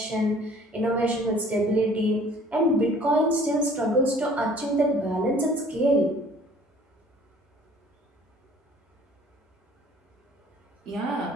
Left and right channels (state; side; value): normal; both; correlation 0.53